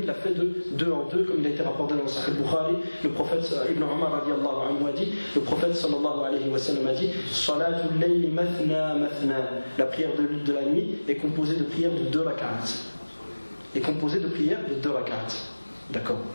il l'a fait de 2 en 2, comme il a été rapporté dans le Sahih Bukhari. Le prophète Ibn Umar radiyallahu anhu a dit, le prophète sallallahu alayhi wa sallam a dit, Salatul layli mathna mathna. La prière de la nuit est composée de prières de 2 rak'at. D'accord.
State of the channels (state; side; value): inverted; both; correlation -1.00